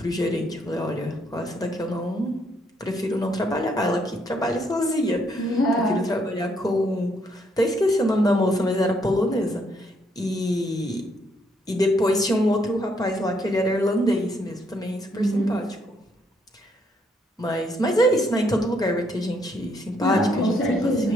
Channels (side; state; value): both; normal; correlation 0.72